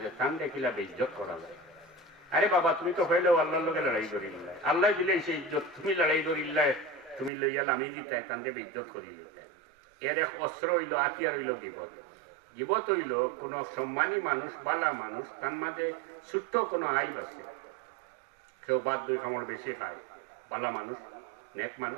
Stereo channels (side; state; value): left; drops out; at 7.3 s